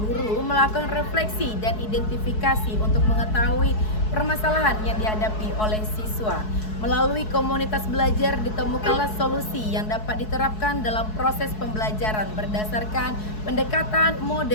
melakukan refleksi dan identifikasi untuk mengetahui permasalahan yang dihadapi oleh siswa. Melalui komunitas belajar ditemukanlah solusi yang dapat diterapkan dalam proses pembelajaran berdasarkan pendekatan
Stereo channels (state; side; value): late; right; 4.7 ms